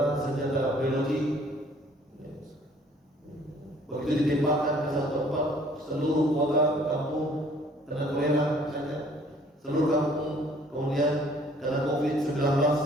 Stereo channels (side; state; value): both; normal; correlation 0.57